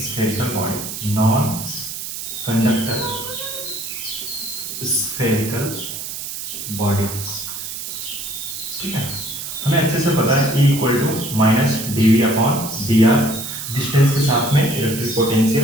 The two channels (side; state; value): right; noise; hiss, 7 dB below the sound